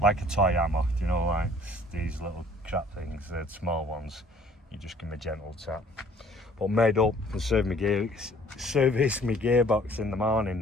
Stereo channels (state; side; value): normal; both; correlation 0.55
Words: like a toy hammer, you know, like these little crap things, the small ones. You just give me a gentle tap. But made up and service my gearbox in the morning